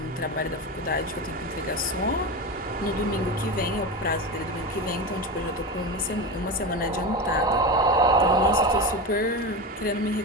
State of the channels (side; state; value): both; normal; correlation 0.21